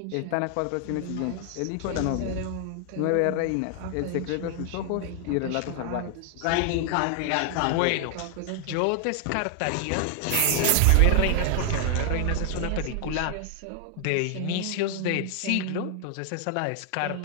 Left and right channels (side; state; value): both; different; correlation 0.00